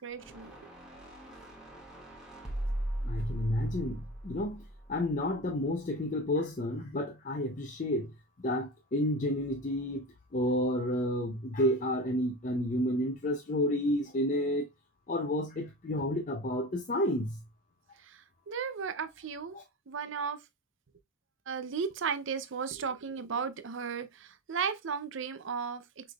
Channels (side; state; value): both; normal; correlation 0.27